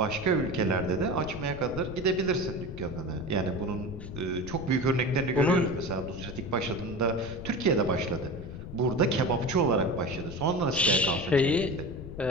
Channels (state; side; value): noise; left; rumble, 11 dB below the sound